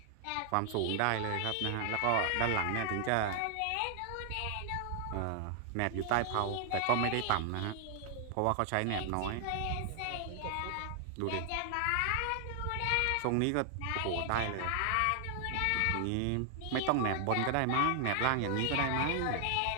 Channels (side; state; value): both; different; correlation 0.00